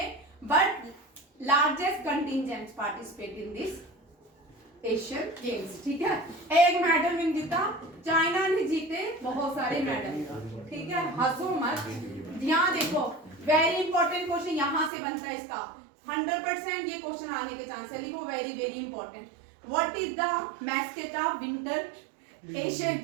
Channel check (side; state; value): left; drops out; at 14.9 s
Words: but largest contingents participate in this Asian games, ठीक है। एक मेडल विन जीता, चाइना ने जीते बहुत सारे मेडल, ठीक है। हंसो मत, यहाँ देखो वेरी इंपॉर्टेंट क्वेश्चन यहाँ से बनता है इसका 100% ये क्वेश्चन आने के चांस है, लिखो very very important. What is the mascot of winter Asian